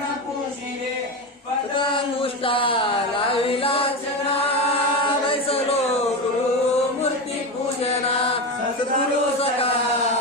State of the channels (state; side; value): normal; both; correlation 0.18